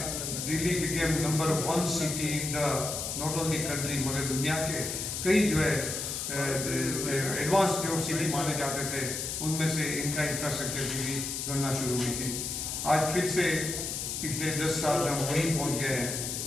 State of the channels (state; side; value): noise; left; hiss, 3 dB below the sound